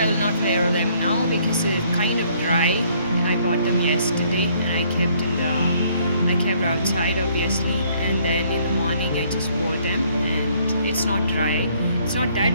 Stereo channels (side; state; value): both; inverted; correlation -0.64